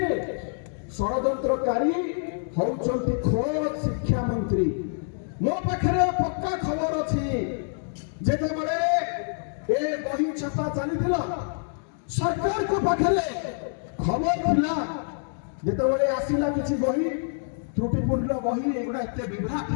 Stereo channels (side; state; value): right; silent; digital silence